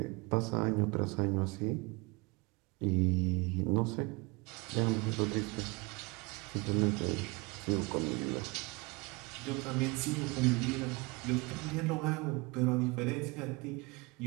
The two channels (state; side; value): quieter; left; 26.5 dB